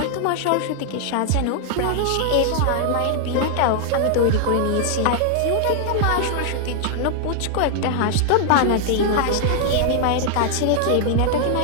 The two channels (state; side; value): different; both; correlation 0.00